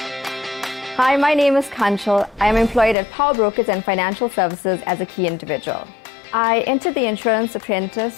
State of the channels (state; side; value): drops out; right; at 3.0 s